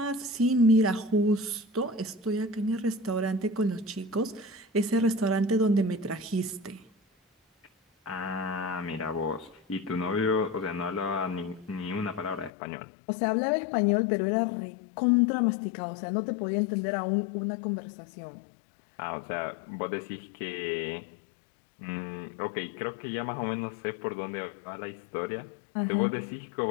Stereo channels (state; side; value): drops out; right; at 12.5 s